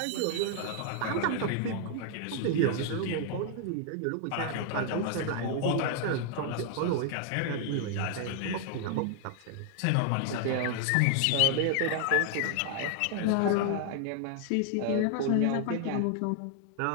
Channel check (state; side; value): different; both; correlation 0.00